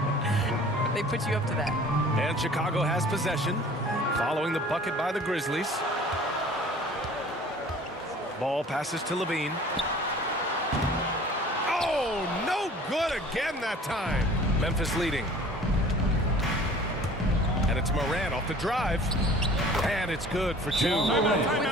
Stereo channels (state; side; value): normal; both; correlation 0.48